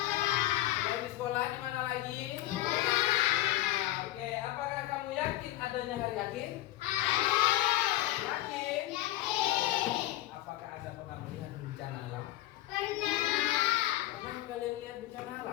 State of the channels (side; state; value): right; quieter; 15.4 dB